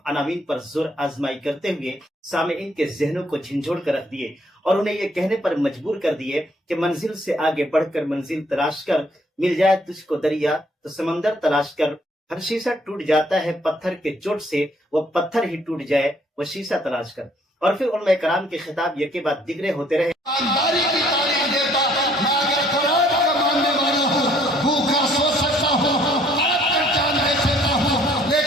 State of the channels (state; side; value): normal; both; correlation 0.63